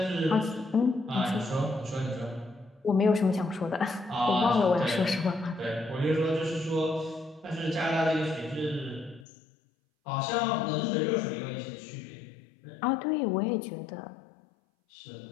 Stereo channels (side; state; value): right; drops out; at 9.2 s